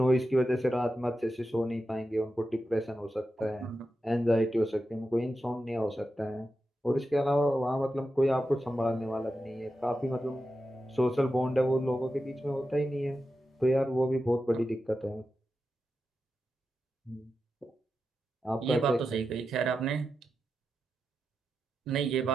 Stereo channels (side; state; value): both; normal; correlation 0.90